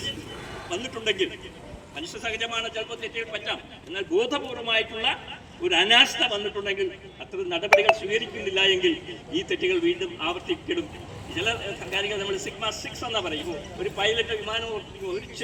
വന്നിട്ടുണ്ടെങ്കിൽ മനുഷ്യ സഹജമാണ്, ചിലപ്പോൾ തെറ്റുകൾ പറ്റാം. എന്നാൽ ബോധപൂർവമായിട്ടുള്ള ഒരു അനാസ്ഥ വന്നിട്ടുണ്ടെങ്കിൽ അത്തരം നടപടികൾ സ്വീകരിക്കുന്നില്ല എങ്കിൽ ഈ തെറ്റുകൾ വീണ്ടും ആവർത്തിക്കപ്പെടും. ചില കാര്യങ്ങൾ നമ്മൾ സിഗ്മ-6 എന്നാ പറയുമ്പോൾ ഒരു പൈലറ്റ് വിമാനം ഓടിക്കുമ്പോൾ ഒരു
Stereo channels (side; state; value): both; identical; correlation 1.00